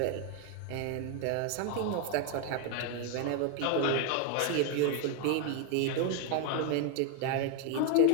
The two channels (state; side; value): different; both; correlation 0.01